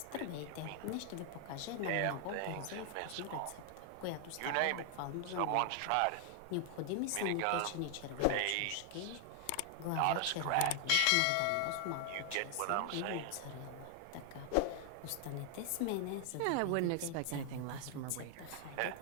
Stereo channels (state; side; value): different; both; correlation 0.00